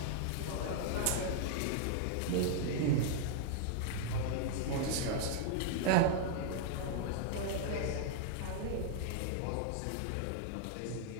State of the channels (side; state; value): both; different; correlation -0.01